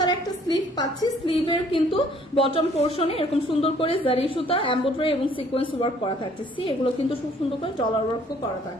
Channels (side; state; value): both; normal; correlation 0.59